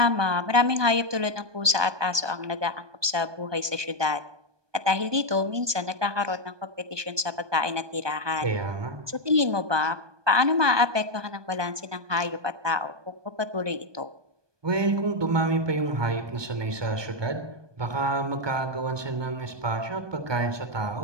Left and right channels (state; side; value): late; left; 1.2 ms